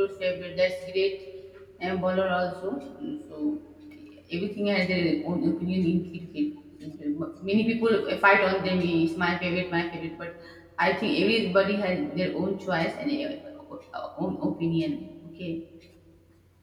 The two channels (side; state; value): both; identical; correlation 1.00